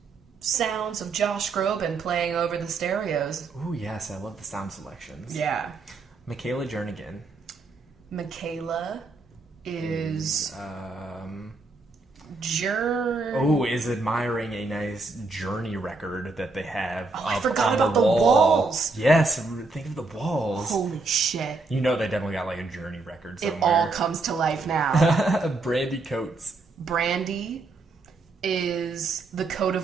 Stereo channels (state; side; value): quieter; left; 3.7 dB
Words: sounds of Josh Groban playing over the stereos. Ooh, yes. I love the sound selections. Yeah. Michaela Jernigan. Michaela is is admiring a nice Journey record that they have. Oh, I forgot about the walls. Yes, think of the walls. Holy shit. You know they definitely got like a Journey record somewhere. It all comes to life now. Brandy Coates. Brandy is the coat